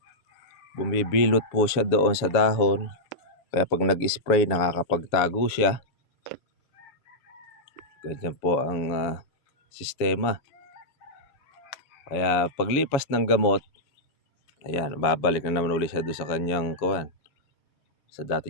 Bumibilot po siya doon sa dahon. Kaya pag nag-spray, nakakapagtago siya. Ganyan po ang sistema. Kaya paglipas ng gamot, ayan, babalik na naman ulit siya doon sa kanyang kuwan. Sa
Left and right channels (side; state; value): right; late; 7.1 ms